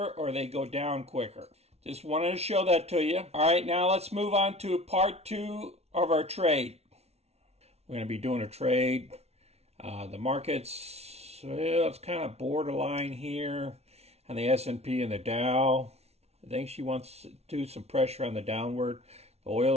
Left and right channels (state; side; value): late; left; 0.31 ms